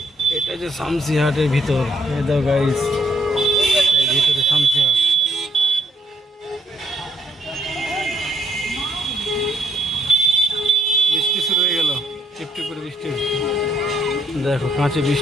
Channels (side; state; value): both; normal; correlation 0.70